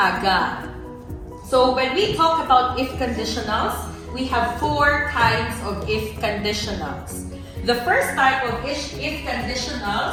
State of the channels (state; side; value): identical; both; correlation 1.00